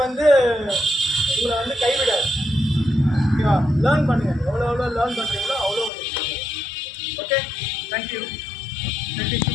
வந்து உங்களை வந்து கைவிடாது. ஓகேவா? லேர்ன் பண்ணுங்கள். எவ்வளோ லேர்ன் பண்ணுறீங்களோ அவ்வளோ. Okay, thank you. ப்ராக்டிஸ்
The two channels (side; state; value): right; drops out; at 5.9 s